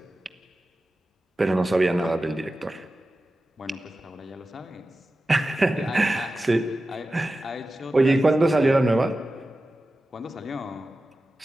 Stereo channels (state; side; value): normal; both; correlation 0.94